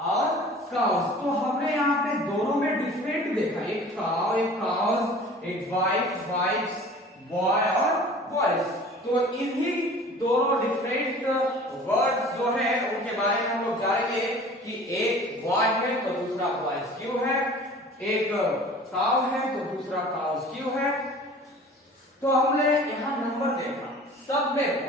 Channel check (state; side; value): normal; both; correlation 0.44